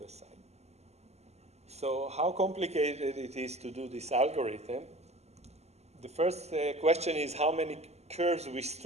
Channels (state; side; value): late; left; 0.31 ms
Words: side. So how complicated it is to do this algorithm? The first question is how many curves we